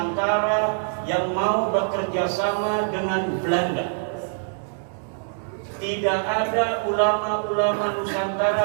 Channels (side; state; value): left; silent; digital silence